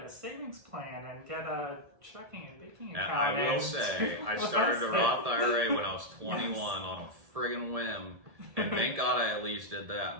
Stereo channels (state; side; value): late; left; 1.7 ms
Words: a savings plan and get a checking and banking account. And I will say, I started a Roth IRA when I was 21 on a friggin' whim. And thank God I at least did that.